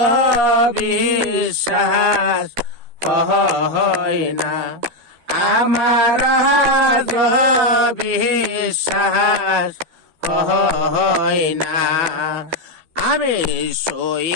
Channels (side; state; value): left; late; 12 ms